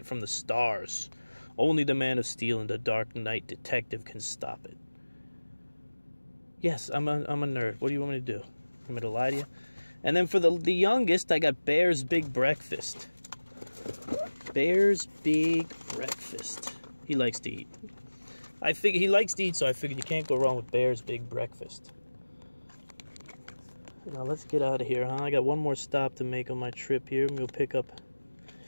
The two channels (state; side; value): inverted; both; correlation -1.00